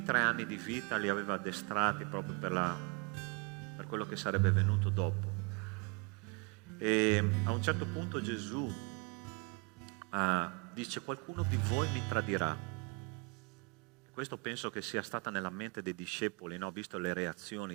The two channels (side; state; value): left; quieter; 30.5 dB